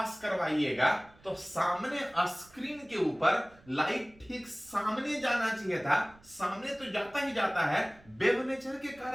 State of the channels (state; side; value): noise; right; rumble, 27 dB below the sound